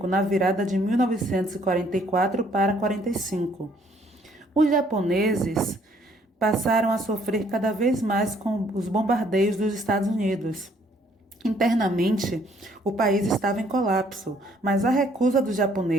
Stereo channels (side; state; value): both; normal; correlation 0.64